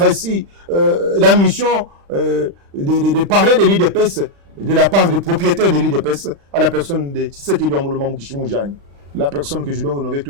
la mission de parler de l'UDPS de la part des propriétaires de l'UDPS à la personne de Tshisekedi Ambuluma Mukishimu-Diagne, la personne que je dois honorer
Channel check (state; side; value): late; left; 35 ms